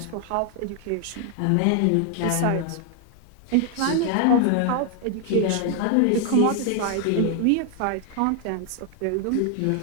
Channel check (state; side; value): different; both; correlation 0.00